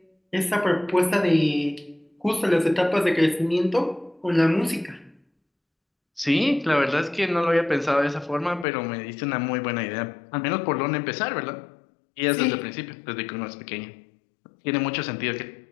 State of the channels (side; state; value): right; drops out; at 8.7 s